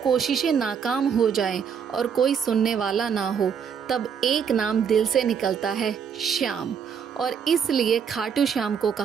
कोशिशें नाकाम हो जाएं और कोई सुनने वाला ना हो, तब एक नाम दिल से निकलता है, श्याम। और इसलिए खाटू श्याम को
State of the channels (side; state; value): left; quieter; 7.1 dB